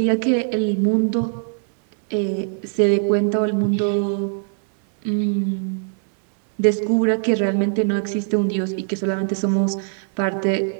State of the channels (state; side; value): silent; left; 64 dB below the other